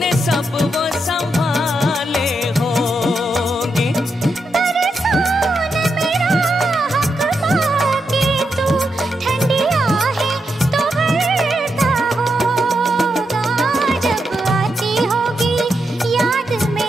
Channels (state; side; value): normal; both; correlation 0.84